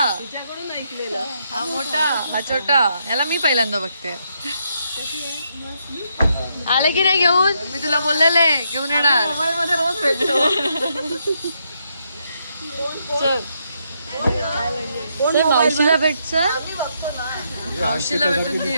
तिच्याकडून ऐकलेलं. हा मोठा, हा छोटा. याला मी पहिल्यांदा बघते. आले की नाही घेऊन? मी तुला बोललेले घेऊन येणार. मोबाईल मध्ये रोज भेटतो. चल चल मावशीला भेट चल मावशीला भेटून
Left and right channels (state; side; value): inverted; both; correlation -0.77